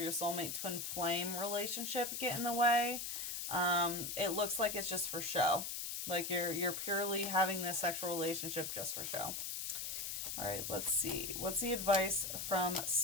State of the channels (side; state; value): left; noise; hiss, 4 dB below the sound